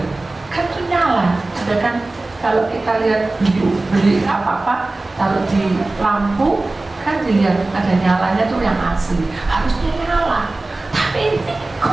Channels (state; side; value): quieter; left; 3.0 dB